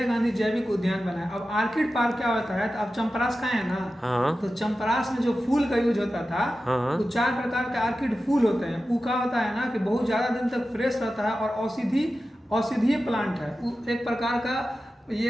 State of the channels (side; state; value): both; normal; correlation 0.93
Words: गांधी जैविक उद्यान बना है। अब आर्किड पार्क क्या होता है? तो आप चंपरास खाए हैं ना? हाँ। तो चंपरास में जो फूल का यूज होता था, हाँ, तो 4 प्रकार के आर्किड फूल होते हैं। वो क्या होता है ना कि बहुत ज्यादा दिन तक फ्रेश रहता है और औषधीय प्लांट है। एक प्रकार का